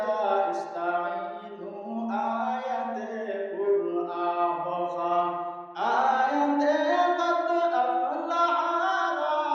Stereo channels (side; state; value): both; identical; correlation 1.00